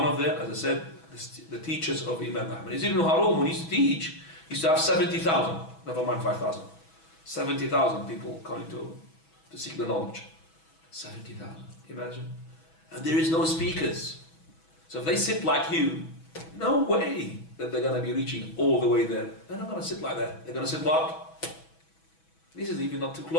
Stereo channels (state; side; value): late; right; 6.1 ms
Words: of the, as I said, the teachers of Imam Ahmad. Yazid ibn Harun, when he used to teach, he used to have 70,000, never mind 5,000. 70,000 people coming to seek the knowledge. 70,000, imagine. And there is no speakers. So if they sit like you, no way that they're going to be reaching all the way there. They're not going to sit like that. They're going to sit what? This is even not too